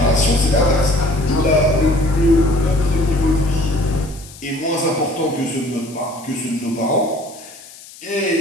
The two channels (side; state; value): left; noise; hiss, 19 dB below the sound